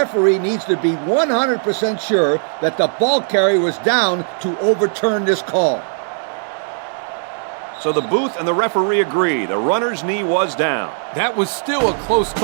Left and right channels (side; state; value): left; silent; 67 dB below the other